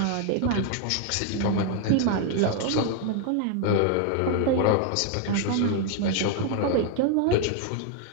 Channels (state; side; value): different; both; correlation 0.00